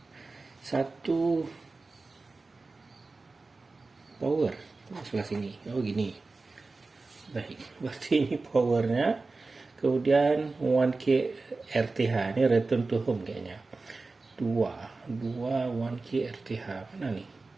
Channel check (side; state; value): left; quieter; 3.7 dB